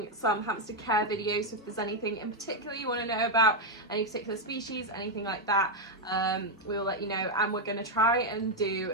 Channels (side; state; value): both; normal; correlation 0.02